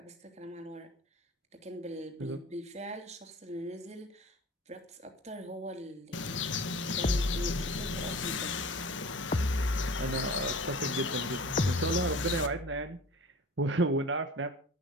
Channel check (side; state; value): both; normal; correlation 0.40